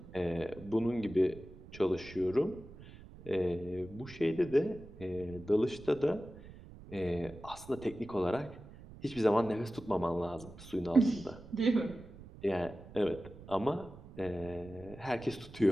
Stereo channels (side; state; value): right; noise; rumble, 17 dB below the sound